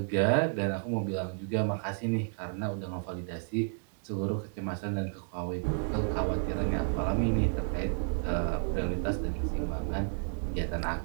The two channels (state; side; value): silent; left; 57 dB below the other